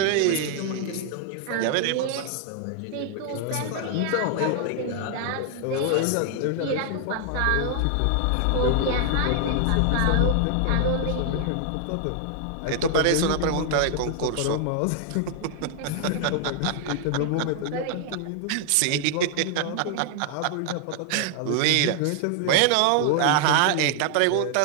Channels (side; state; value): both; different; correlation 0.00